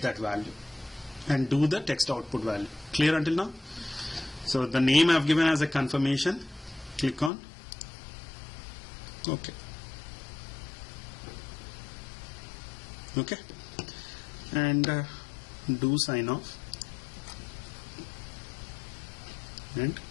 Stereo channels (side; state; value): right; drops out; at 7.3 s